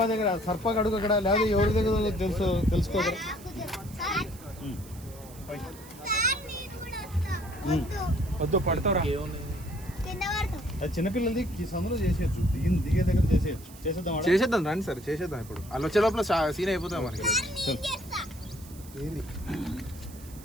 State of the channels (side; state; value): right; noise; hiss, 20 dB below the sound